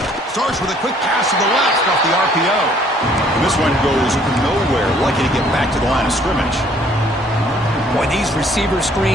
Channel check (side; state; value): both; normal; correlation 0.60